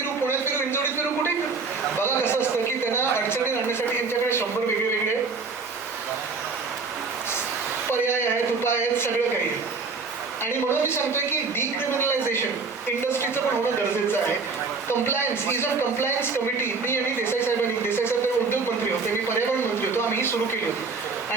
पुण्यात फिरू, हिंजवडीत फिरू, कुठे फिरू. बघा कसं असतं की त्यांना अडचणी आणण्यासाठी यांच्याकडे 100 वेगळे वेगळे पर्याय आहेत, उपाय आहेत, सगळं काही आहे. आणि म्हणून मी सांगतोय की डिक्रिमिनलायझेशन इंडस्ट्रीचं पण होणं गरजेचं आहे. Compliance, ease of compliance committee मी आणि देसाई साहेब उद्योग मंत्री होते, मी पर्यावरण मंत्री होतो, आम्ही ही सुरू केली होती.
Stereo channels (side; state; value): left; quieter; 4.5 dB